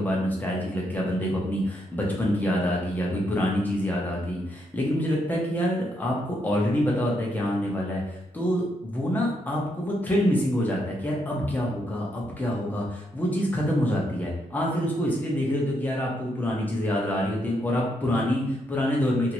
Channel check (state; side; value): normal; both; correlation 0.78